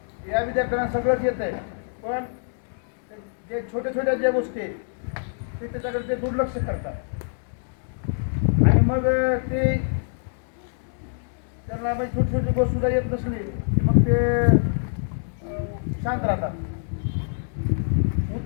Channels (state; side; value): silent; right; digital silence